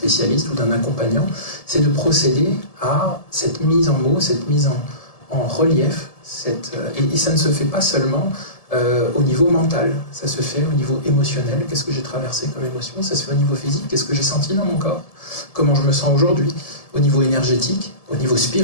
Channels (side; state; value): right; late; 1.7 ms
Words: ou d'un accompagnant, c'est de procéder à cette mise en mots, cette mise en relief, et ça ne se fait pas seulement au niveau mental, ça se fait au niveau émotionnel, qu'est-ce que j'ai traversé comme émotion, ça se fait au niveau physique, qu'est-ce que j'ai senti dans mon corps, comment je me sens aujourd'hui, au niveau énergétique, au niveau